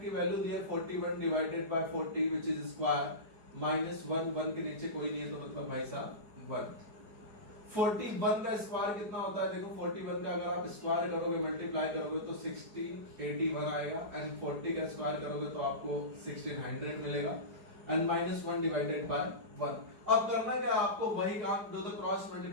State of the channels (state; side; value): late; left; 4.8 ms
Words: की वैल्यू दी है 41 divided by 40 which is square -1, 1 के नीचे कोई नहीं है तो मतलब भाई साहब 1। 41 का स्क्वायर कितना होता है? देखो 41 का अगर आप स्क्वायर करोगे, मल्टीप्लाई करोगे तो 1681 आएगा, एंड 40 का स्क्वायर करोगे तो आपको 1600 मिलेगा, एंड -1 डिवाइडेड बाय 1। अब करना क्या आपको? वही काम, डू द क्रॉस